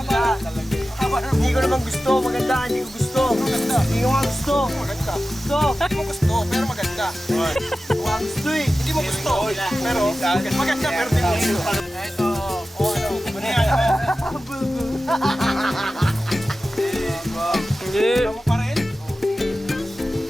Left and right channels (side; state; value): both; normal; correlation 0.94